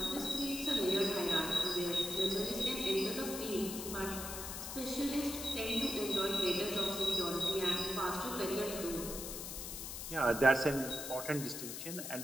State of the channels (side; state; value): left; noise; hiss, 7 dB below the sound